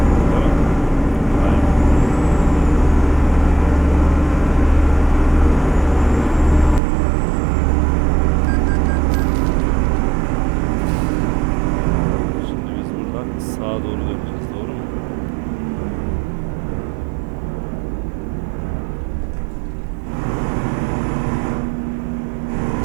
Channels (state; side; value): drops out; left; at 6.8 s